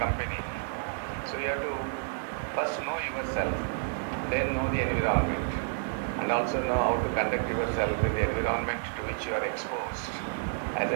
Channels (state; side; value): silent; left; digital silence